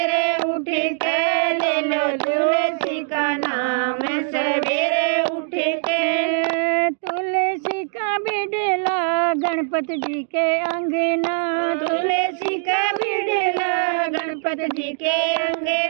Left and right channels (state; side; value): silent; left; digital silence